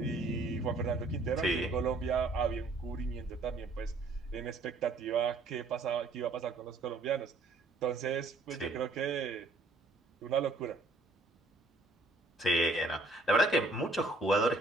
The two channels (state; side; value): quieter; left; 3.1 dB